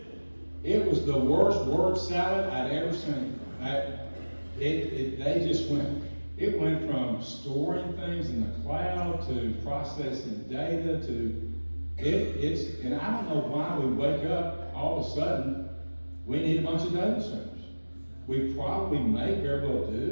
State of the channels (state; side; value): inverted; both; correlation -1.00